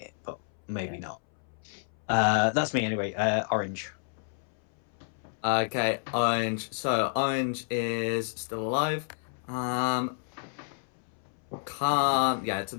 but maybe not. That's me anyway. Orange. Okay, Orange. So, Orange is still alive. Yeah, so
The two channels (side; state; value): right; silent; 58 dB below the other